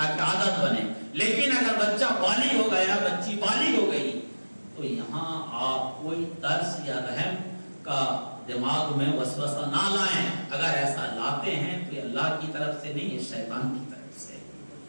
عادت بنے۔ لیکن اگر بچہ بالغ ہو گیا، بچی بالغ ہو گئی تو یہاں آپ کوئی ترس یا رحم کا دماغ میں وسوسہ نہ لائیں۔ اگر ایسا لاتے ہیں تو یہ اللہ کی طرف سے نہیں، یہ شیطان کی طرف سے۔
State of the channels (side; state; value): both; inverted; correlation -1.00